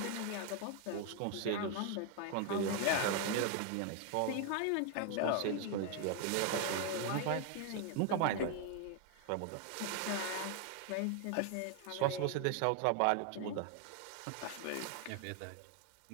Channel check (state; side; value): different; both; correlation 0.00